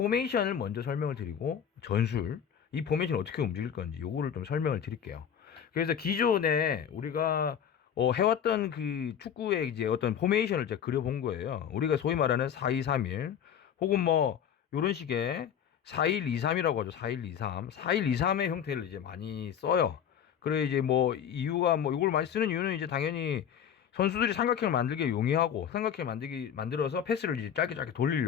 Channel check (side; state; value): right; quieter; 8.5 dB